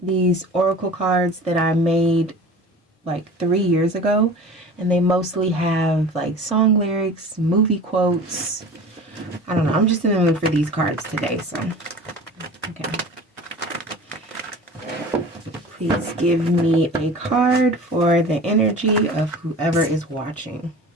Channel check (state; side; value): normal; both; correlation 0.39